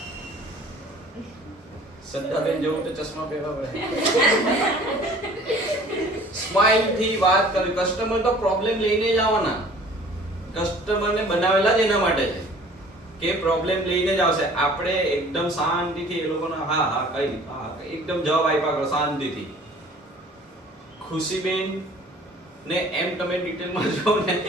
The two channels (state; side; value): normal; both; correlation 0.50